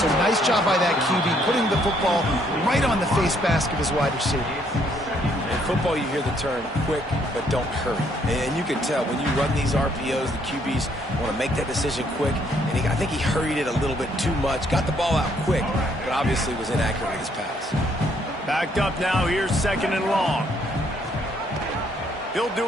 nice job by that QB, putting the football right on the face mask of his wide receiver. In football, you hear the term quick, but don't hurry. And you can tell when you run these RPOs, the QBs want to make that decision quick. And I think he hurried it a little bit too much, got the ball out quick, but obviously was inaccurate with his pass. Backed up now. Here's second and long. He'll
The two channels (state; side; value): normal; both; correlation 0.68